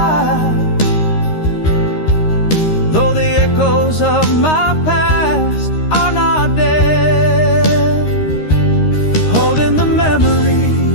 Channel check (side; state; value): right; late; 13 ms